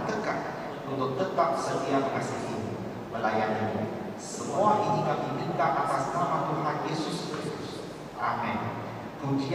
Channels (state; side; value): identical; both; correlation 1.00